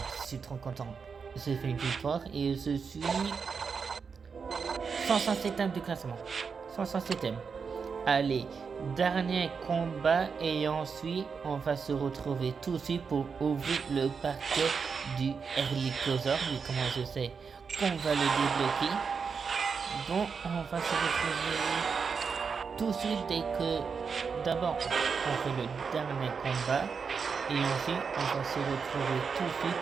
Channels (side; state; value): left; quieter; 5.7 dB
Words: Je suis trop content. J'ai fait une victoire et je suis 107ème du classement. 107ème. Allez, dernier combat et ensuite on va se retrouver tout de suite pour ouvrir le paquet du Herlicosaur. Mais comment je sais qu'on va le débloquer? Donc on va se retrouver tout de suite dès que d'abord on fait le dernier combat et ensuite on va se retrouver tout de suite